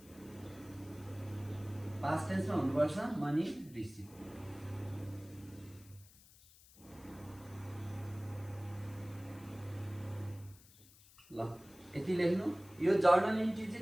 past टेन्समा हुनुपर्छ मनी रिसिभ। ल यति लेख्नु। यो जर्नल इन्ट्री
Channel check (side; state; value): left; noise; hiss, 24 dB below the sound